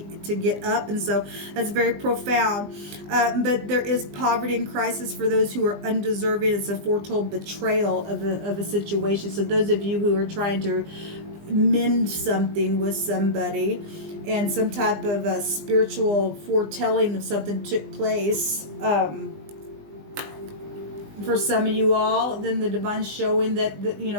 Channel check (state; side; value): late; left; 20 ms